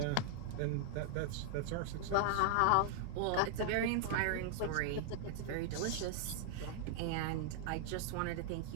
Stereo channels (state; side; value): different; both; correlation -0.01